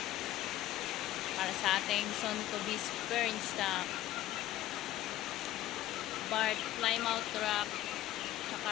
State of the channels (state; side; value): quieter; right; 14.4 dB